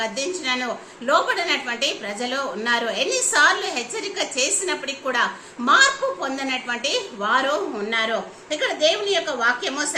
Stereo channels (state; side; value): identical; both; correlation 1.00